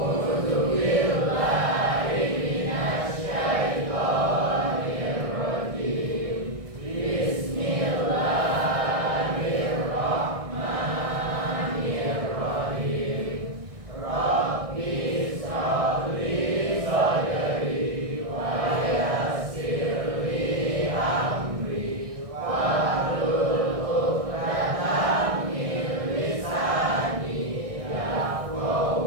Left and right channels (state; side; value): late; left; 1.6 ms